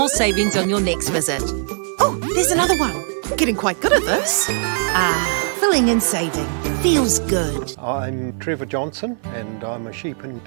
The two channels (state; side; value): silent; left; 57 dB below the other